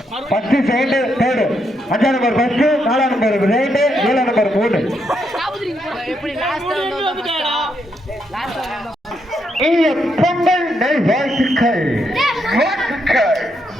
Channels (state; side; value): normal; both; correlation 0.78